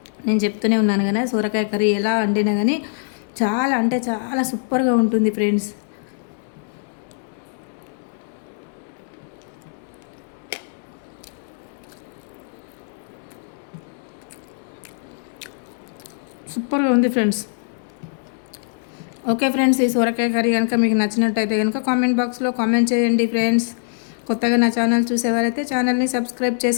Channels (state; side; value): silent; right; 64 dB below the other